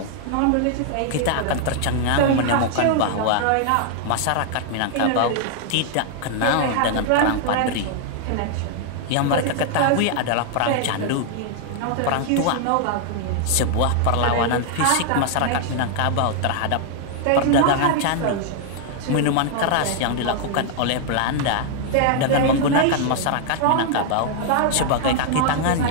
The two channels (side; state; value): both; different; correlation 0.00